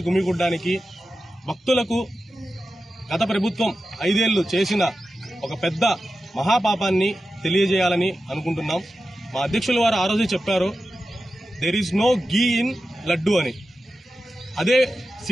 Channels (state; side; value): normal; both; correlation 0.92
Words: గుమిగూడడానికి భక్తులకు గత ప్రభుత్వం 5 ఏళ్లు చేసిన ఒక పెద్ద మహాపాపాన్ని తెలియజేయాలని అనుకుంటున్నాం. మా అధ్యక్షుల వారు ఆ రోజు చెప్పారు, there is no ghee in laddu అని. అదే